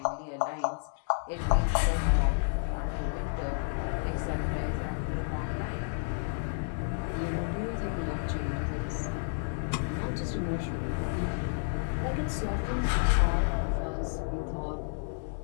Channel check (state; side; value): silent; right; digital silence